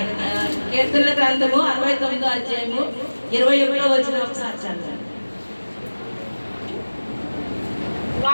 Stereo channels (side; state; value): both; inverted; correlation -1.00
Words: కీర్తనల గ్రంథము 69వ అధ్యాయము 21వ వచనం ఒకసారి చదవండి.